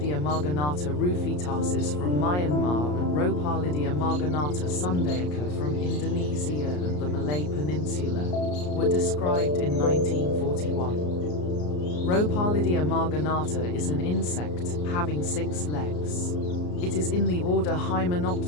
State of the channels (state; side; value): late; right; 34 ms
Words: marginata rufitasis from Myanmar and Ropalidia marginata sundaica from Indonesia and the Malay Peninsula, were described in 1941. Ropalidia marginata is an insect, having 6 legs. It is in the order